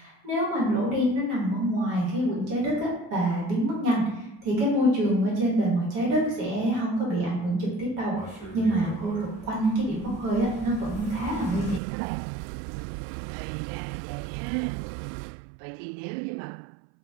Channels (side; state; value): left; drops out; at 11.8 s